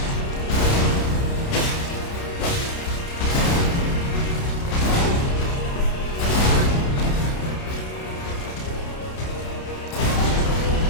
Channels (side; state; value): right; late; 30 ms